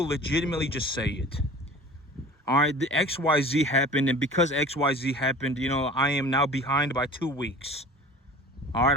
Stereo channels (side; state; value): both; normal; correlation 0.42